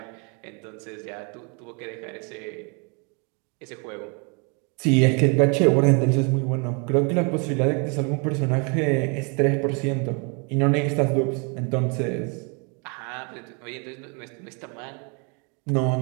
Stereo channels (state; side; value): quieter; left; 34.7 dB